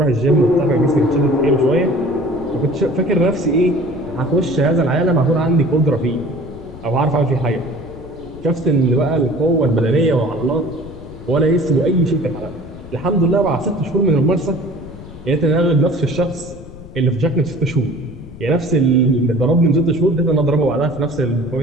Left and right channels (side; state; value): left; noise; rumble, 16 dB below the sound